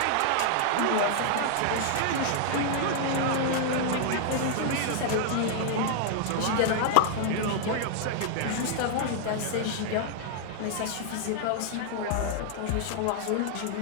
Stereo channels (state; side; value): different; both; correlation -0.01